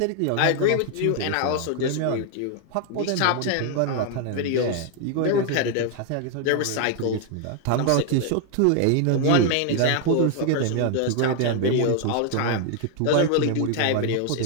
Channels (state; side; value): different; both; correlation 0.00